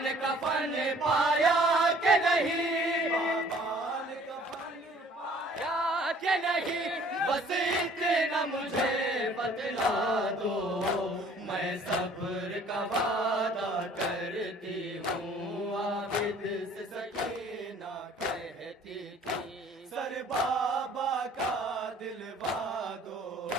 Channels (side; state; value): both; normal; correlation 0.55